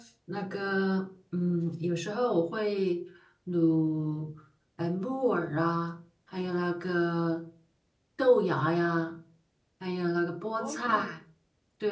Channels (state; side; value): identical; both; correlation 1.00